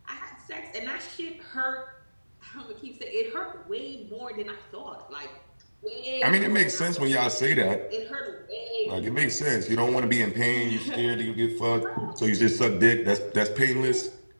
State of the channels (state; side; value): inverted; both; correlation -1.00